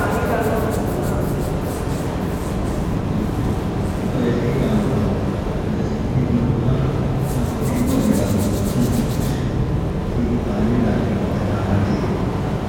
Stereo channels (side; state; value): both; identical; correlation 1.00